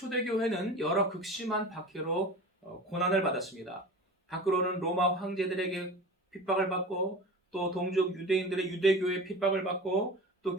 여러 극심한 박해로 고난을 받았습니다. 밖으로는 로마 황제들에게 핍박을 받고 또 동족 유대인들의 유대교회 핍박을 받고 또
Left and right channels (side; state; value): both; normal; correlation 0.34